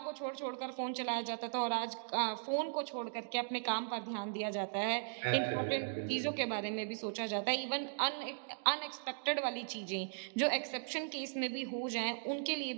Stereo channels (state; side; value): silent; left; digital silence